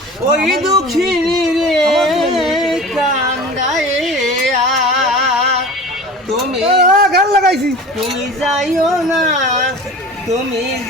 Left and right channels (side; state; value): both; normal; correlation 0.37